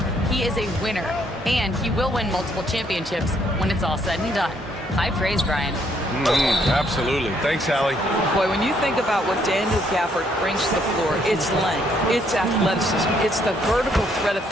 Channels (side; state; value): both; normal; correlation 0.69